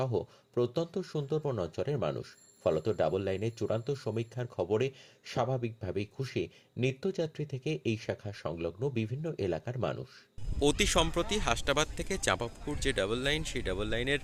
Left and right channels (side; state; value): both; identical; correlation 1.00